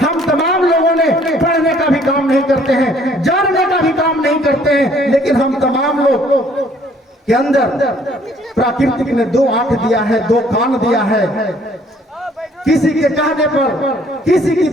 हम तमाम लोगों ने पढ़ने का भी काम नहीं करते हैं, जानने का भी काम नहीं करते हैं, लेकिन हम तमाम लोग के अंदर प्राकृतिक ने 2 आंख दिया है, 2 कान दिया है। किसी के कहने पर, किसी की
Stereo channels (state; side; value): normal; both; correlation 0.60